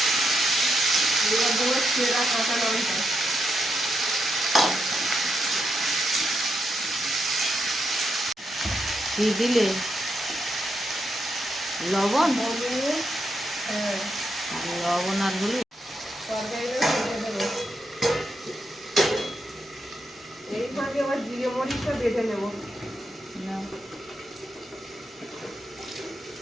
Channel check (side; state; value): both; normal; correlation 0.82